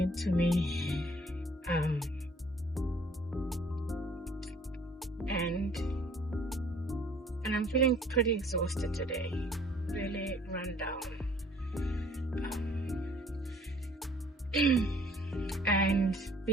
me. And I'm feeling pretty exhausted today, really run down. And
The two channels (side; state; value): both; normal; correlation 0.57